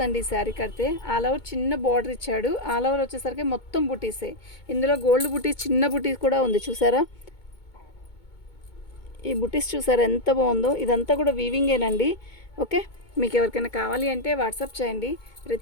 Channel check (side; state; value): right; late; 2.2 ms